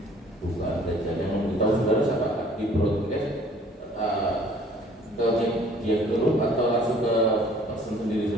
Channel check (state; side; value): normal; both; correlation 0.55